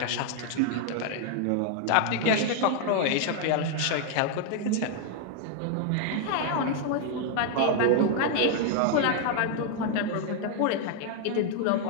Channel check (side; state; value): both; different; correlation 0.00